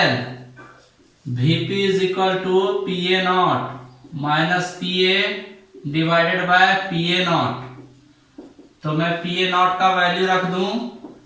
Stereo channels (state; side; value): identical; both; correlation 1.00